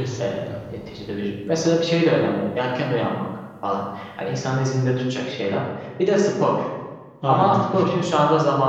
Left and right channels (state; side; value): identical; both; correlation 1.00